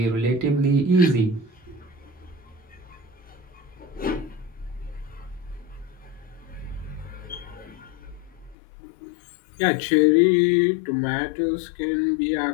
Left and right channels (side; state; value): right; drops out; at 8.6 s